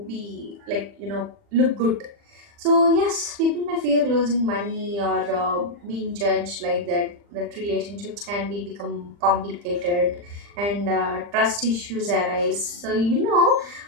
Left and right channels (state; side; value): late; left; 40 ms